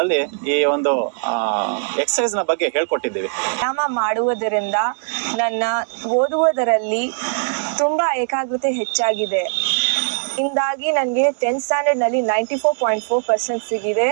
ಈ ಒಂದು ಎಕ್ಸಸೈಸ್ ನ ಬಗ್ಗೆ ಹೇಳ್ಕೊಟ್ಟಿದ್ದೀವಿ. ವ್ಯಾಯಾಮ ಮಾಡುವುದರಿಂದ ನನ್ನ ಓದುವುದರಲ್ಲಿ ತುಂಬ ಏಕಾಗ್ರತೆ ಹೆಚ್ಚಾಗಿದೆ. ಇಂದಾಗಿ ನನಗೆ 10th ಸ್ಟ್ಯಾಂಡರ್ಡ್ನಲ್ಲಿ 94.4% ಸಿಗಿದೆ.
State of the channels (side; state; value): left; silent; digital silence